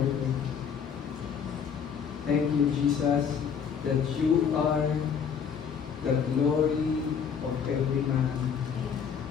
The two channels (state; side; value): quieter; right; 7.1 dB